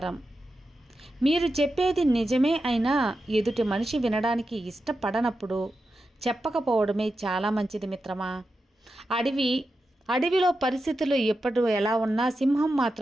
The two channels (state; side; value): normal; both; correlation 0.90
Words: మీరు చెప్పేది నిజమే అయినా ఎదుటి మనిషి వినడానికి ఇష్టపడనప్పుడు చెప్పకపోవడమే చాలా మంచిది మిత్రమా. అడవిలో పరిస్థితులు ఎప్పుడు ఎలా ఉన్నా సింహం